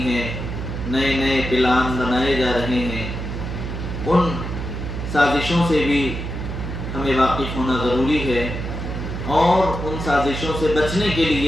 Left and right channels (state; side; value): noise; right; hum, 5 dB below the sound